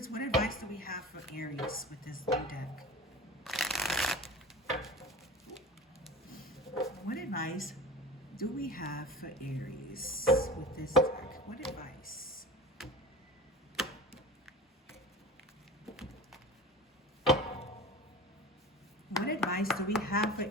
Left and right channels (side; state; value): both; normal; correlation 0.34